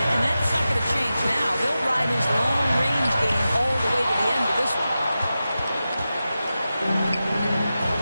and that's not going to change now. They'll ride his long-range game all the way to the end of this one.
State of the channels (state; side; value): inverted; both; correlation -0.93